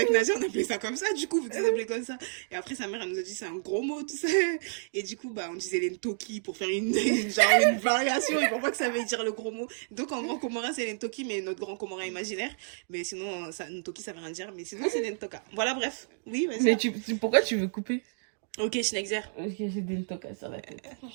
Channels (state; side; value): silent; left; digital silence